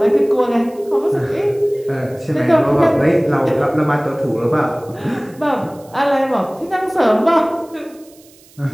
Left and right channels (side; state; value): right; noise; hiss, 27 dB below the sound